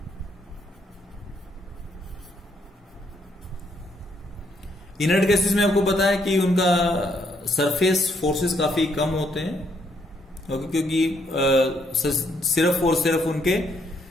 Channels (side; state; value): both; normal; correlation 0.72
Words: Inert gases में आपको पता है कि उनका सरफेस फोर्सेस काफी कम होते हैं, क्योंकि सिर्फ और सिर्फ उनके